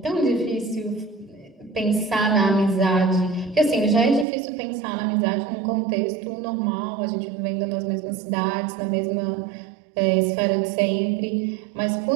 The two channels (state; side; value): drops out; left; at 4.2 s